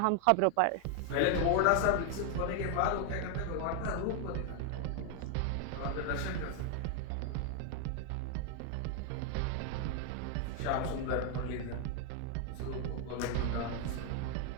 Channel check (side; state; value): both; different; correlation 0.00